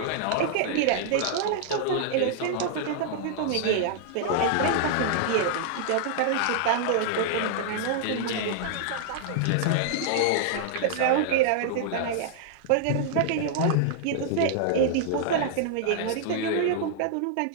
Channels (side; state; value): both; different; correlation -0.01